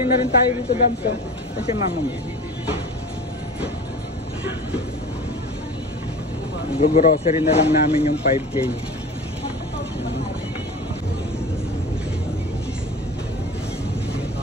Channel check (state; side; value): normal; both; correlation 0.36